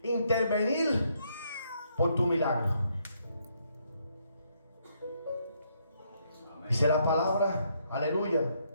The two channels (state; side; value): inverted; both; correlation -0.73